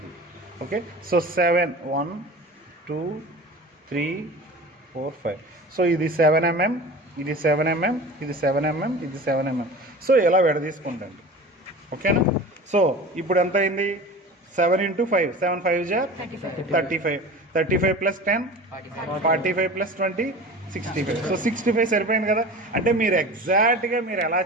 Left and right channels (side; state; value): both; normal; correlation 0.36